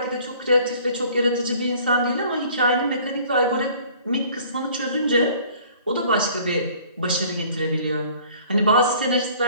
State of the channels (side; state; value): both; inverted; correlation -0.53